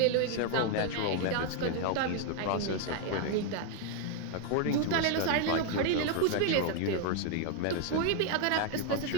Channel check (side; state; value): both; different; correlation 0.01